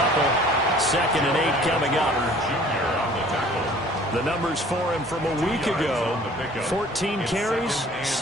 2nd and 8 coming up. The numbers for him from a week ago: 14 carries,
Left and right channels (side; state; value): both; normal; correlation 0.51